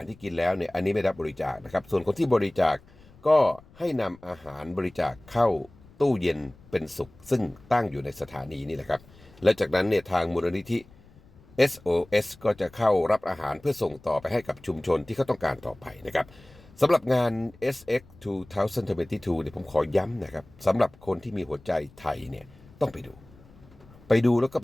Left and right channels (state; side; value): noise; left; rumble, 25 dB below the sound